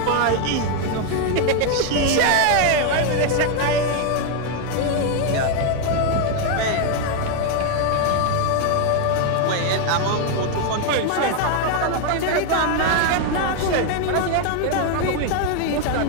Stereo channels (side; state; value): both; different; correlation 0.01